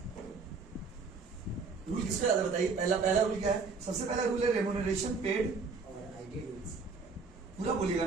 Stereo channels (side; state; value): left; quieter; 4.6 dB